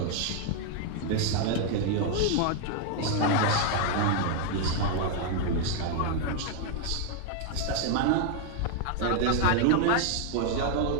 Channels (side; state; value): both; different; correlation 0.00